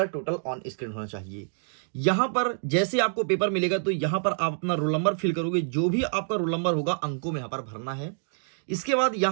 टोटल ऑन स्क्रीन होना चाहिए। यहां पर जैसे आपको पेपर मिलेगा तो यहां पर आप अपना रोल नंबर फिल करोगे। जो भी आपका रोल नंबर होगा अंकों में यहां पर भरना है। इसके बाद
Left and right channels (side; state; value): left; silent; digital silence